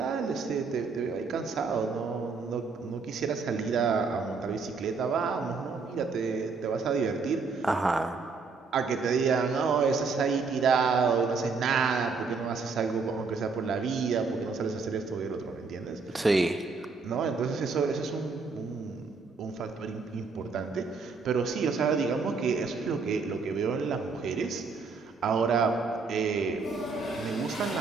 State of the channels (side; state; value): left; quieter; 4.6 dB